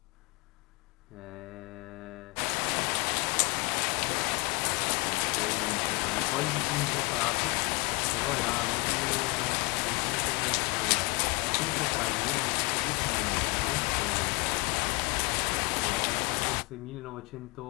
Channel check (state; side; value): quieter; right; 27.5 dB